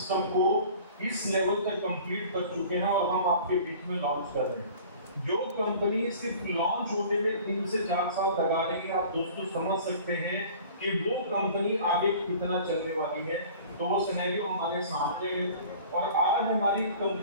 को इस लेवल तक कंप्लीट कर चुके हैं और हम आपके बीच में लॉन्च कर रहे हैं। जो कंपनी सिर्फ लॉन्च होने में 3 से 4 साल लगा रही है, आप दोस्तों समझ सकते हैं कि वो कंपनी आगे कितना चलने वाली है। तो वो सिनेरियो हमारे सामने है और आज हमारी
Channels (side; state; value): both; inverted; correlation -0.45